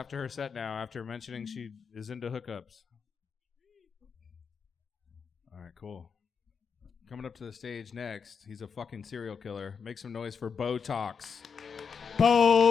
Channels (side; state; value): right; quieter; 6.1 dB